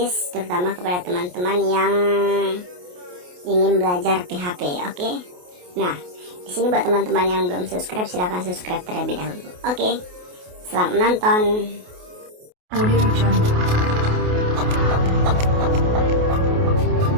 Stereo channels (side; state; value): left; late; 28 ms